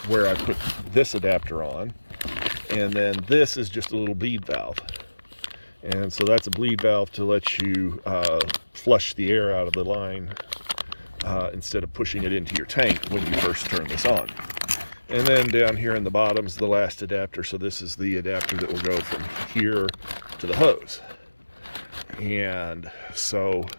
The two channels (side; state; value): both; inverted; correlation -1.00